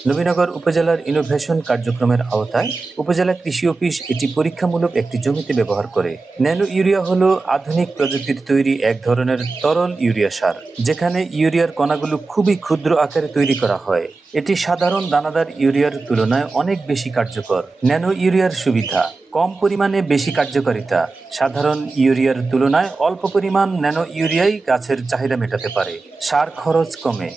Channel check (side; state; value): left; quieter; 3.8 dB